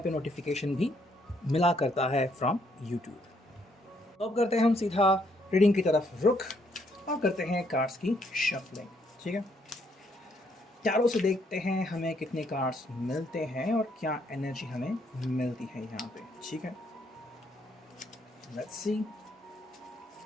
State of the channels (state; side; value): normal; both; correlation 0.71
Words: नोटिफिकेशन भी मिला करता है फ्रॉम यूट्यूब। तो अब करते हैं हम सीधा रीडिंग की तरफ रुख और करते हैं कार्ड्स की शफलिंग। ठीक है, चारों से देखते हैं हमें कितने कार्ड्स मिलते हैं और क्या एनर्जी हमें मिलती है यहाँ पे। ठीक है, लेट्स सी।